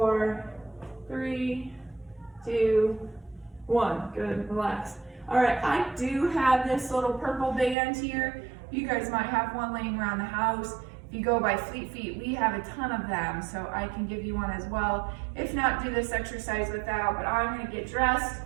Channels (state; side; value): drops out; left; at 7.8 s